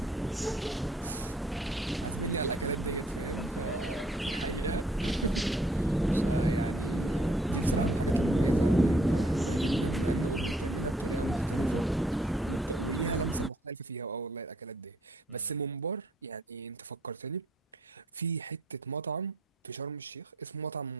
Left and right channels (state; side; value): normal; both; correlation 0.65